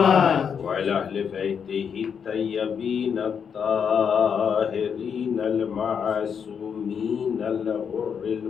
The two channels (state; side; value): quieter; right; 7.1 dB